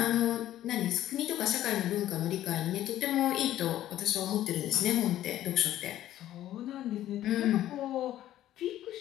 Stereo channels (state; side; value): quieter; right; 13.1 dB